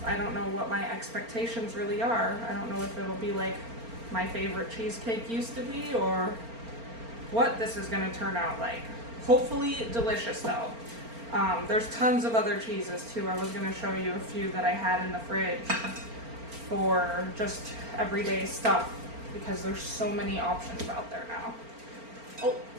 what my expectations really are. I don't know if it'll be like my favorite cheesecake used to be, or what this is going to turn out like. Hopefully delicious though. There's tons of other cheeses too. I was going to show you a few that I had in the fridge for just everyday stuff because there's so many options out there now. Oh,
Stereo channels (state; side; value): late; left; 4.4 ms